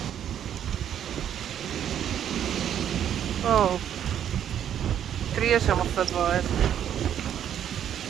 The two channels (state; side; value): quieter; left; 9.8 dB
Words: Oh, trieën is helemaal vet waard.